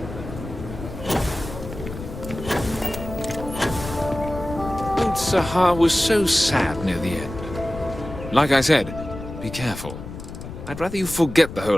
Old Sahar was so sad near the end. Like I said, be careful. I'd rather you forget the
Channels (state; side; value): noise; left; rumble, 11 dB below the sound